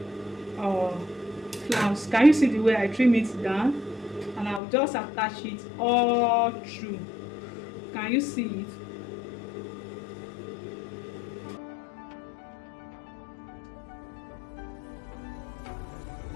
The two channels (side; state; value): right; drops out; at 4.6 s